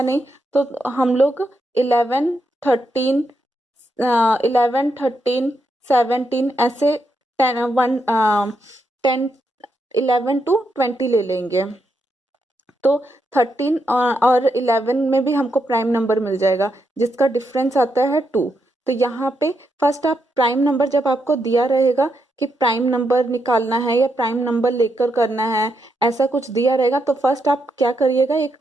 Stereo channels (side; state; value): both; normal; correlation 0.81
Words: नहीं, तो हम लोग 11 13 11 13 17 ऐसे 10 11 टू 20 ले लेंगे। तो 13 और 11 में भी हमको प्राइम नंबर मिल जाएगा जिसका डिफरेंस आता है 2। तो यहाँ पे फर्स्ट आप प्राइम नंबर, जब आपको दिया रहेगा कि प्राइम नंबर निकालना है या प्राइम नंबर लेकर करना है, ऐसा कुछ दिया रहेगा, तो फर्स्ट आप क्या करिएगा, एक